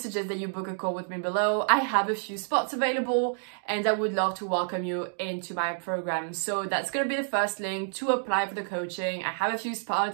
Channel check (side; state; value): left; silent; digital silence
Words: that you book a call with me below. I have a few spots available and I would love to welcome you into my program. So that's gonna be the first link to apply for the coaching. I have a few